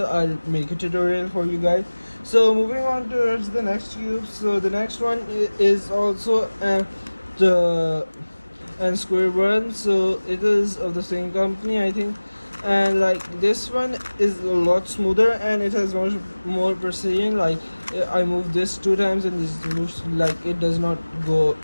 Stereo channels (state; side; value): inverted; both; correlation -1.00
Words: I'll make a tutorial for you guys. So moving on towards the next cube. So the next one is also the square one. So it is of the same company, I think, and like this one is a lot smoother and it has much more precision. Like I moved this 2 times and this moves, like it does not go